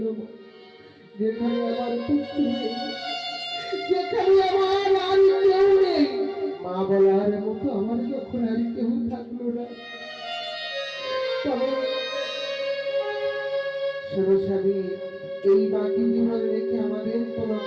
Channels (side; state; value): both; identical; correlation 1.00